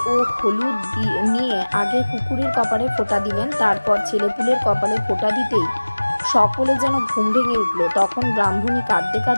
ও হলুদ নিয়ে আগে কুকুরের কপালে ফোঁটা দিলেন। তারপর ছেলেপুলের কপালে ফোঁটা দিতেই সকলে যেন ঘুম ভেঙে উঠল। তখন ব্রাহ্মণী কাঁদতে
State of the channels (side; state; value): both; inverted; correlation -1.00